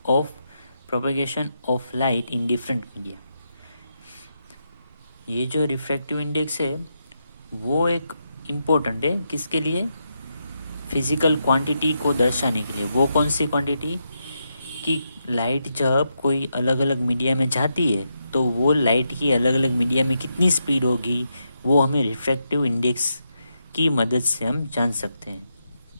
of propagation of light in different media. ये जो refractive index है वो एक important है किसके लिए? फिजिकल क्वांटिटी को दर्शाने के लिए. वो कौन सी क्वांटिटी? कि लाइट जब कोई अलग अलग मीडिया में जाती है तो वो लाइट की अलग अलग मीडिया में कितनी स्पीड होगी वो हमें रिफ्रैक्टिव इंडेक्स की मदद से हम जान सकते हैं.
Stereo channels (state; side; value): inverted; both; correlation -0.83